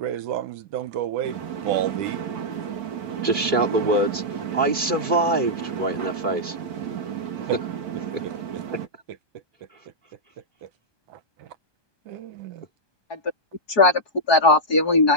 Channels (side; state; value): right; late; 1.2 ms